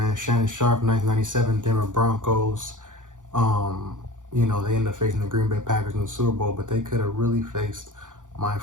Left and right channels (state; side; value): late; left; 0.87 ms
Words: Shannon Sharpe, 1997 Denver Broncos. They ended up facing the Green Bay Packers in the Super Bowl, but they could have really faced my